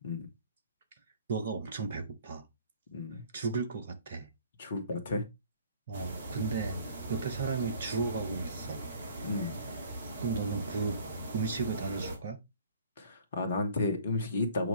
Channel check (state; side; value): inverted; both; correlation -0.52